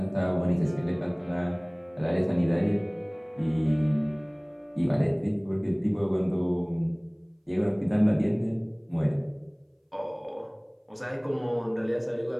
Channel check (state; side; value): identical; both; correlation 1.00